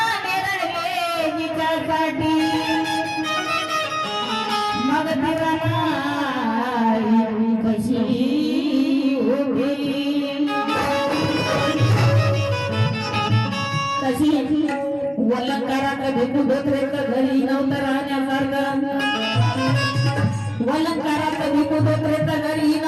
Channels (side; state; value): both; identical; correlation 1.00